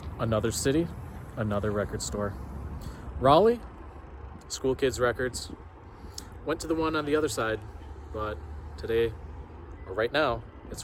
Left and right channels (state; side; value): identical; both; correlation 1.00